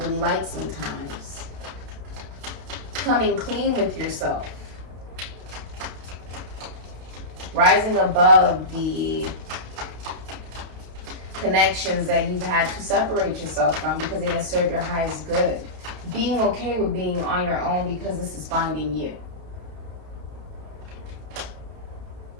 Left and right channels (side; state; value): left; late; 32 ms